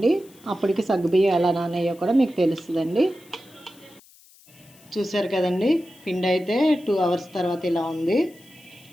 అప్పటికి సగ్గుబియ్యం ఎలా నానయ్యో కూడా మీకు తెలుస్తుందండి. చూసారు కదండి, పిండి అయితే 2 అవర్స్ తర్వాత ఇలా ఉంది.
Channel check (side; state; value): left; noise; hiss, 26 dB below the sound